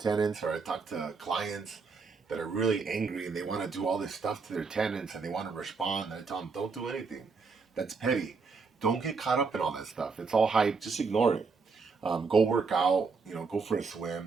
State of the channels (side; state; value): left; quieter; 4.8 dB